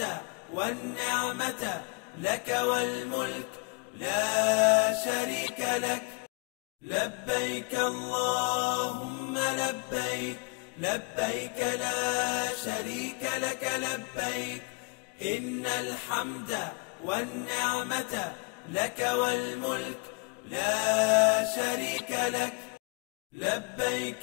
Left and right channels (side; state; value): right; quieter; 31.3 dB